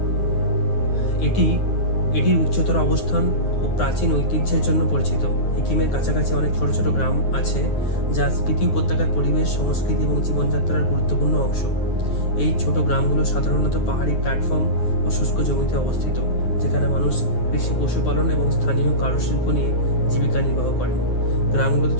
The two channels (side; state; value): right; late; 9.5 ms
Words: এটির উচ্চতর অবস্থান ও প্রাচীন ঐতিহ্যের জন্য পরিচিত। হিকিমের কাছাকাছি অনেক ছোট ছোট গ্রাম আছে যা স্পিতি উপত্যকার পরিবেশ, সংস্কৃতি এবং জীবনযাত্রার গুরুত্বপূর্ণ অংশ। এই ছোট গ্রামগুলো সাধারণত পাহাড়ি প্ল্যাটফর্ম ও শুষ্ক জমিতে অবস্থিত, যেখানে মানুষ কৃষি, পশুপালন এবং স্থানীয় কারুশিল্প নিয়ে জীবিকা নির্বাহ করেন। গ্রামগুলোতে